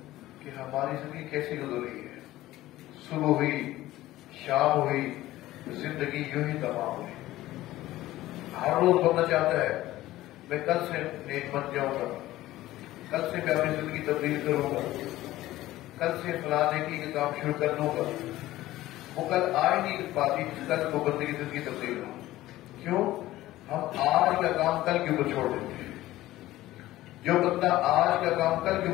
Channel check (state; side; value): quieter; right; 16.0 dB